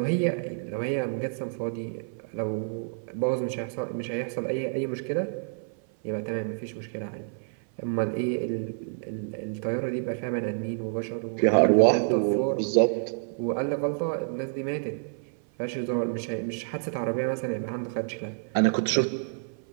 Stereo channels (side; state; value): left; silent; 55 dB below the other